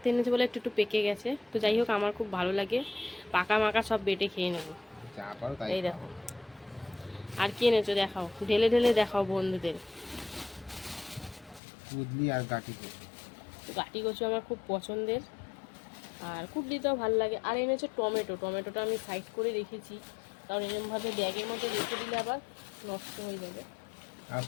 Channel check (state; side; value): drops out; right; at 11.6 s